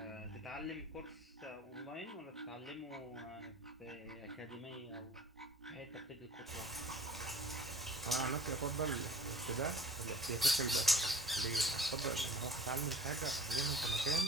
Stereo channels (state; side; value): normal; both; correlation 0.48